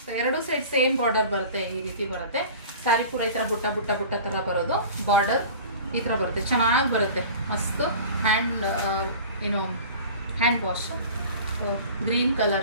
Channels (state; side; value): inverted; both; correlation -0.40